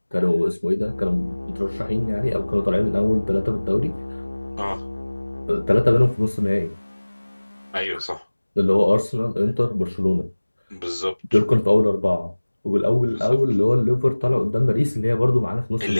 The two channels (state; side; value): inverted; both; correlation -1.00